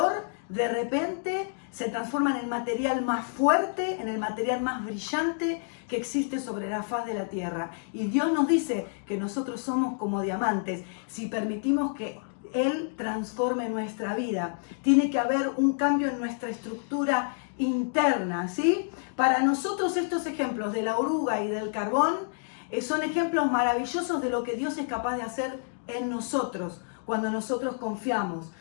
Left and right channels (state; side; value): silent; right; digital silence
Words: de repente se transforma en el material más fuerte, en el material más brillante que existe sobre la faz de la tierra. Y Dios nos dice que nosotros somos como diamantes si permitimos que Él transforme nuestra vida. Tiene que haber un cambio en nuestra estructura interna, ¿sí? Para nosotros estos ejemplos de la oruga y del carbón son ejemplos maravillosos de lo que Dios es capaz de hacer en nosotros cuando nosotros confiamos.